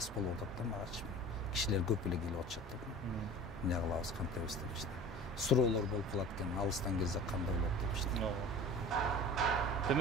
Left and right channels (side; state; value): both; normal; correlation 0.39